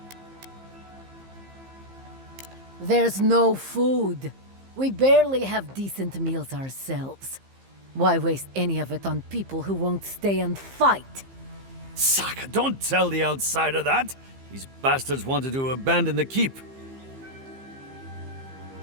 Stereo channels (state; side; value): late; left; 15 ms